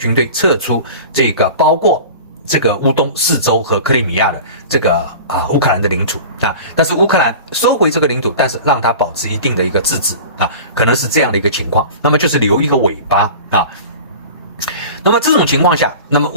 队撤出这个包括这个乌东4州和克里米亚的这个乌克兰的领土啊，但是乌克兰收回这个领土，但是让它保持一定的一个自治啊，可能是这样的一个情况。那么就是留一个尾巴啊。那么这种情况下，那么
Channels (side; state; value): both; inverted; correlation -0.37